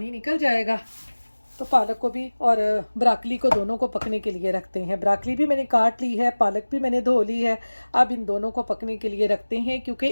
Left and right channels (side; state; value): both; inverted; correlation -1.00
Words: निकल जाएगा तो पालक को भी और ब्राकली को दोनों को पकने के लिए रखते हैं। ब्राकली भी मैंने काट ली है, पालक भी मैंने धो ली है। अब इन दोनों को पकने के लिए रखते हैं क्योंकि